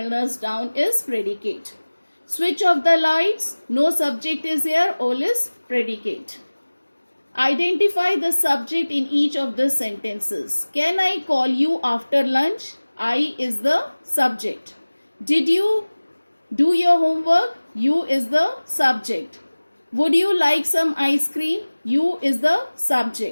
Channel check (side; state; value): both; inverted; correlation -1.00